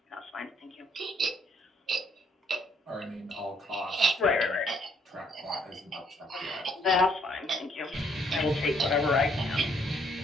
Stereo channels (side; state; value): both; normal; correlation 0.68